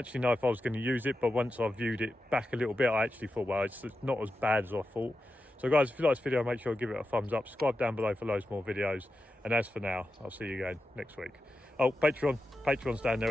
know if I was going to use it, but once I viewed it back a little bit, I actually thought, well, it's not as bad as I thought. So guys, if you like this video, make sure to give it a thumbs up, subscribe down below for loads more videos, and as for now, I'll see you again next week. Oh, Patreon's down there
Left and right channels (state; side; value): normal; both; correlation 0.90